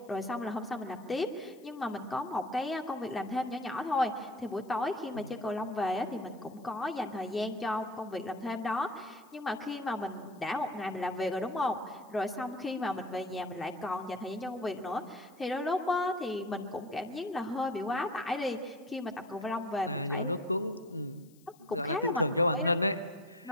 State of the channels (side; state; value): left; noise; hiss, 29 dB below the sound